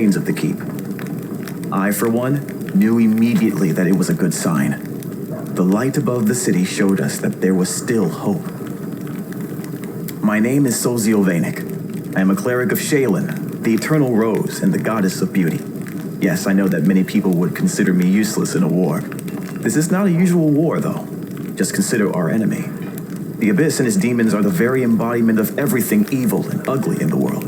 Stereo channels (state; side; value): identical; both; correlation 1.00